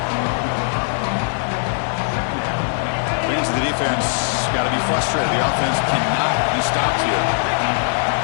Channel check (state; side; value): silent; right; digital silence